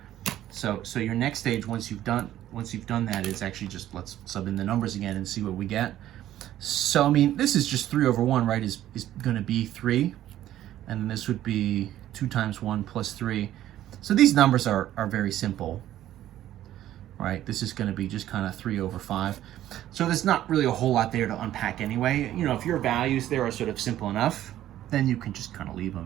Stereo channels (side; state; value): left; quieter; 12.9 dB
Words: so your next stage, once you've done that, is actually just let's sub in the numbers again and see what we get. So, I mean, this is just 3 over 1, right, is going to be 3. And then this would be 2 times 1 plus 3. So these numbers are very simple, right? This is going to be just kind of 3 over 5. So there's not really a whole lot there to unpack anyway. If your values there are sort of simple enough, then you can just kind of leave